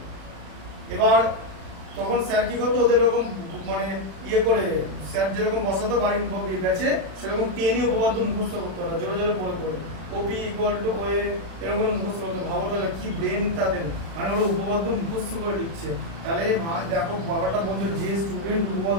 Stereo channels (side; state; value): left; late; 36 ms